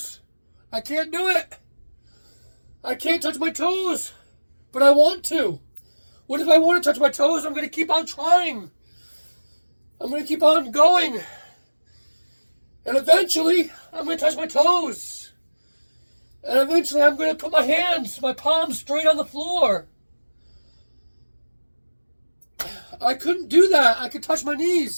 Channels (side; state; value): both; inverted; correlation -1.00